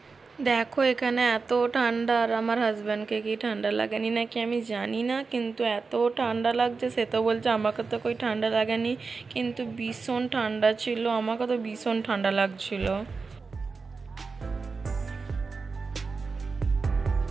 দেখো এখানে এত ঠান্ডা, আর আমার হাজব্যান্ডকে কি ঠান্ডা লাগেনি নাকি আমি জানি না, কিন্তু এত ঠান্ডা লাগছে। সে তো বলছে আমাকে তো কই ঠান্ডা লাগেনি, কিন্তু ভীষণ ঠান্ডা ছিল, আমাকে তো ভীষণ ঠান্ডা লাগছিল।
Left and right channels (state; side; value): quieter; left; 4.5 dB